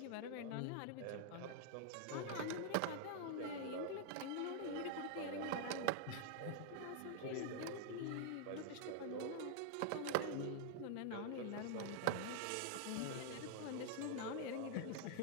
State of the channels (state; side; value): different; both; correlation -0.01